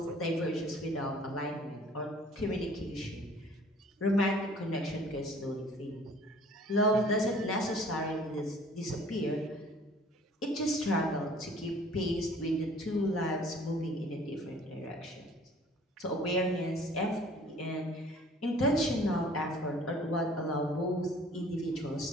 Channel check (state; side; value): normal; both; correlation 0.52